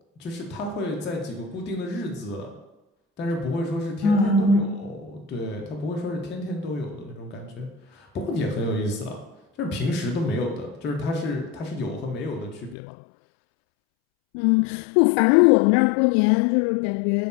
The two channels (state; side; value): drops out; right; at 12.8 s